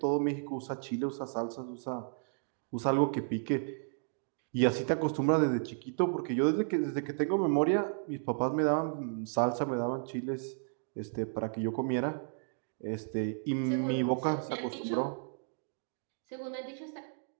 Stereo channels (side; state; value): left; silent; digital silence